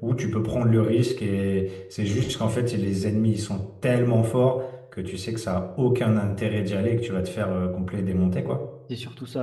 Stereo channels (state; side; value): identical; both; correlation 1.00